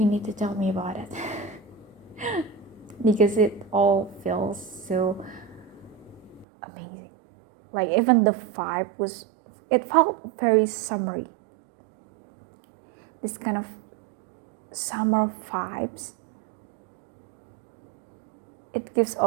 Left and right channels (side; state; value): left; drops out; at 6.5 s